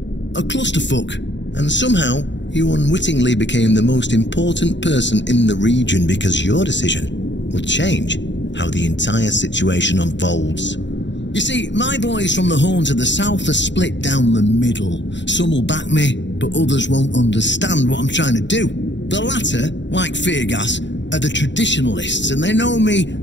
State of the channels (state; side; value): late; right; 0.52 ms